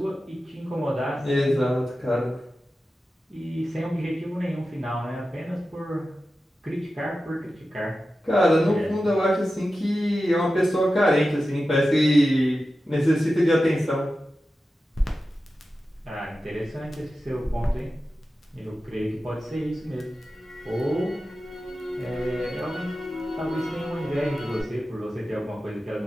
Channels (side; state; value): both; normal; correlation 0.93